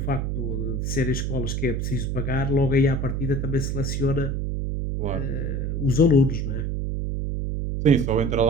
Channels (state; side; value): noise; right; hum, 1 dB below the sound